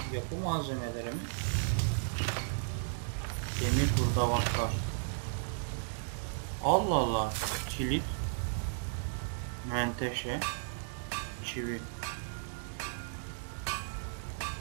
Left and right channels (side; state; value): left; silent; digital silence